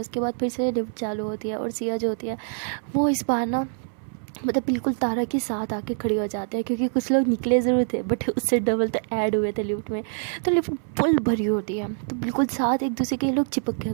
उसके बाद फिर से लिफ्ट चालू होती है और सिया जो होती है वो इस बार ना मतलब बिल्कुल तारा के साथ आके खड़ी हो जाते हैं, क्योंकि कुछ लोग निकले ज़रूर थे बट उससे डबल तो ऐड हुए थे लिफ्ट में। तो लिफ्ट फुल भरी होती है तो बिल्कुल साथ एक दूसरे के लोग चिपक के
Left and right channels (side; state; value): left; silent; 62 dB below the other